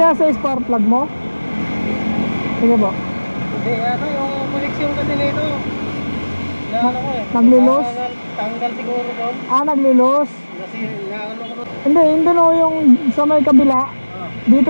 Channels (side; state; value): both; inverted; correlation -1.00